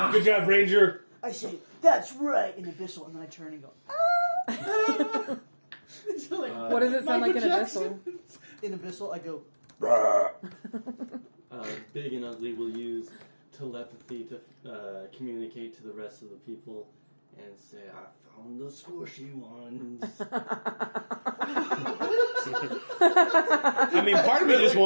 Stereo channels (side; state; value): both; inverted; correlation -1.00